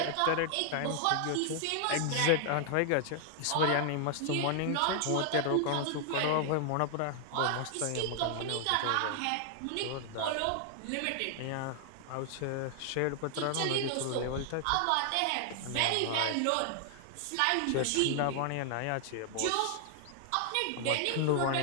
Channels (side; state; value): both; different; correlation 0.00